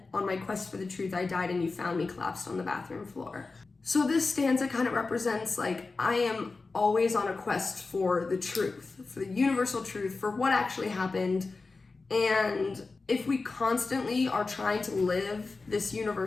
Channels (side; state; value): right; quieter; 3.9 dB